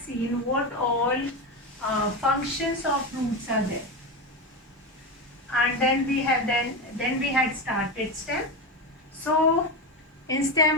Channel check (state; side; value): normal; both; correlation 0.17